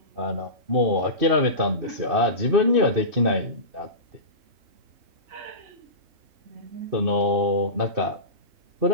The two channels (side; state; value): left; late; 2.6 ms